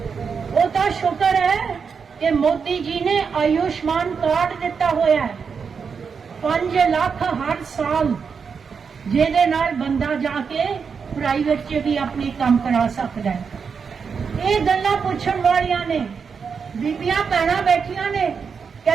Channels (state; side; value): quieter; left; 5.9 dB